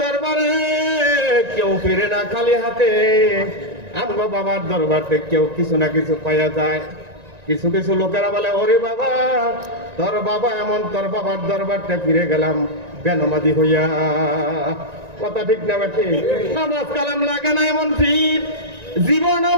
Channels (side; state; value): left; late; 1.9 ms